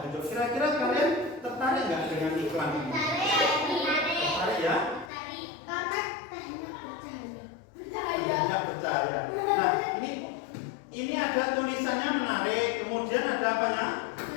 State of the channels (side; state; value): right; drops out; at 5.1 s